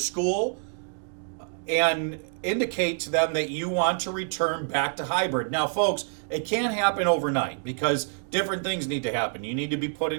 and indicate to them that you want to return back to hybrid. Now, folks, it can't happen overnight because different things need to happen. You need to be put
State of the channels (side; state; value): left; silent; digital silence